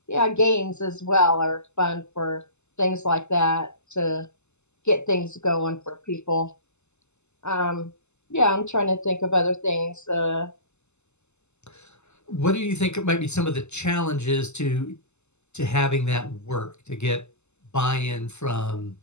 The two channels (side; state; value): right; late; 0.82 ms